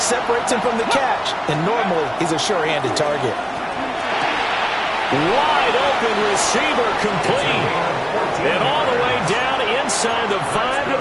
separates him from the catch, and normally he's a sure-handed target. Wide open receiver complete. And all the way down inside the 5 to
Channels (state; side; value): identical; both; correlation 1.00